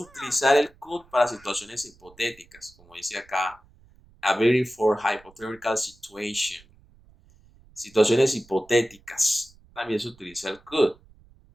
el could para situaciones hipotéticas, como dice acá, a very for hypothetical situation. Situaciones hipotéticas. También se utiliza el could.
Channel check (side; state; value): right; noise; rumble, 28 dB below the sound